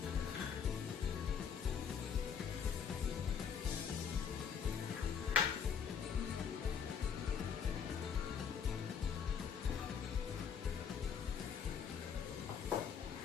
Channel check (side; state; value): right; quieter; 7.1 dB